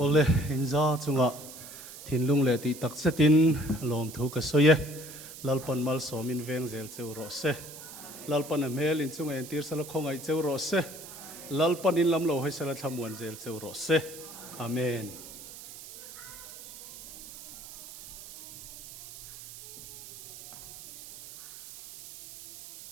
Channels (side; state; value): right; noise; hiss, 14 dB below the sound